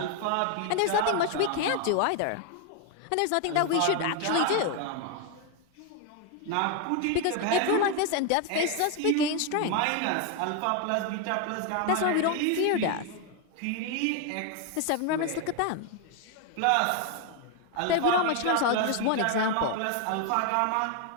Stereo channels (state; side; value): different; both; correlation 0.01